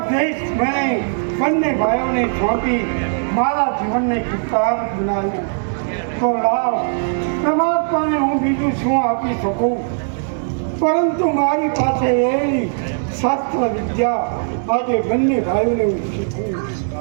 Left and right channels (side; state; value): left; silent; digital silence